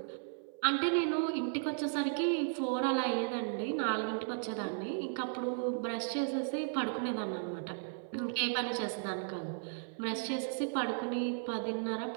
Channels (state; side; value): silent; left; 54 dB below the other